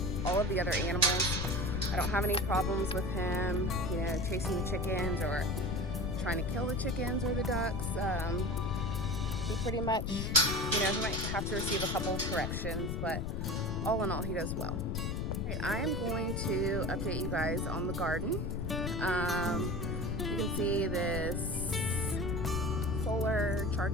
all of the other animals. I don't have any problems with him, you know, chasing the chickens or trying to kill the chickens or the ducks. He pretty much, you know, he might have to receive a couple of corrections, but all in all, he does well. Okay, I am going to update you guys on the garden. You can see this solar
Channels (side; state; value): left; noise; rumble, 1 dB below the sound